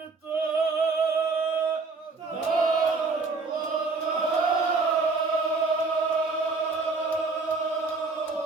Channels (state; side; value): quieter; left; 4.1 dB